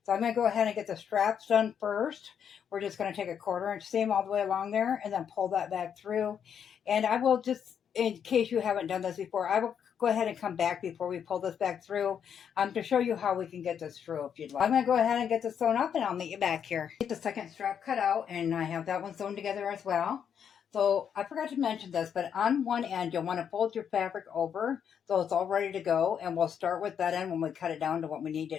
So I'm going to go ahead and get the straps done first. We're just going to take a 1/4 inch seam all the way along there and then pull that back through. And I will just, in case you haven't done this before, I will go ahead and come back before we pull this back through to show you how we can get this through if you'd like. I'm going to go ahead and get this sewn up and I'll meet you back here. Get the second strap cut out and I have that one sewn together as well. So I forgot to mention this, but on one end you'll want to fold your fabric over so it's all ready to go, and we'll start with that end when we cut it down to what we need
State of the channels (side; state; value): right; quieter; 8.1 dB